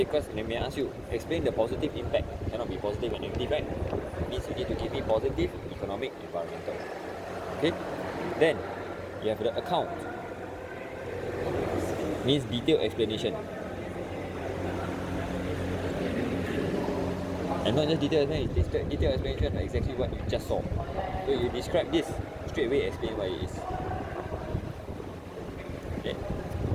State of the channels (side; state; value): both; identical; correlation 1.00